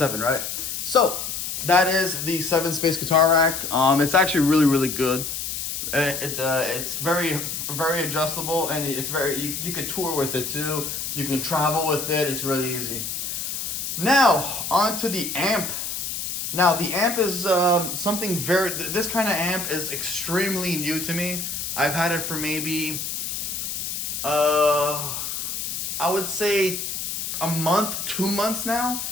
right? So that is the 7-space guitar rack. It's actually really, really good. It's very, very adjustable, and it's you can tour with it too. You can travel with it. It's really easy. Now onto the amp. Now the amp is something this kind of amp is extremely new to me. I've had it for maybe I would say a month, 2 months now.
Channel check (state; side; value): noise; left; hiss, 4 dB below the sound